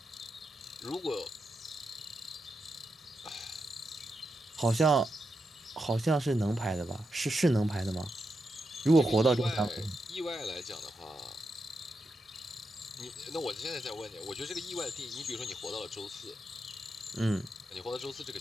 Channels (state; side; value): normal; both; correlation 0.85